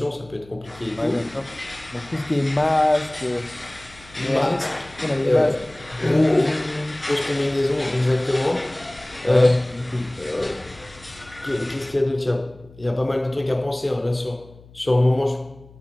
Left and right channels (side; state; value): left; noise; hum, 23 dB below the sound